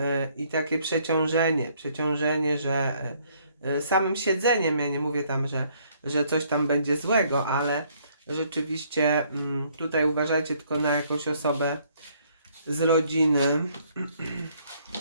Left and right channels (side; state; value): both; inverted; correlation -0.65